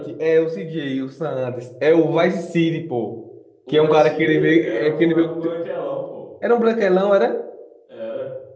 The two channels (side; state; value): both; identical; correlation 1.00